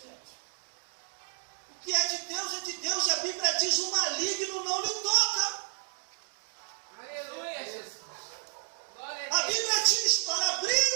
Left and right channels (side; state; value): left; silent; digital silence